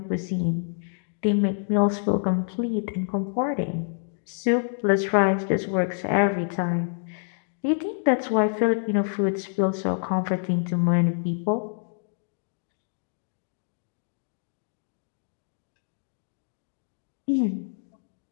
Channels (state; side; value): silent; right; digital silence